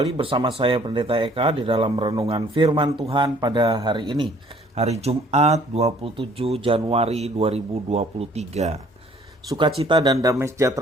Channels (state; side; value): normal; both; correlation 0.58